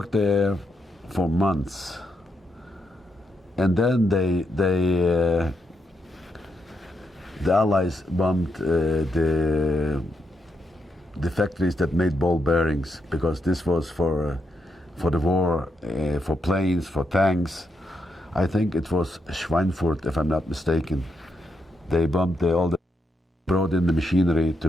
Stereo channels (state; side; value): normal; both; correlation 0.81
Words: there for months. And then the Allies bombed the factories that made ball bearings, because this was for the war, for planes, for tanks. I think it was Schweinfurt, if I'm not mistaken. They bombed brought in the machinery to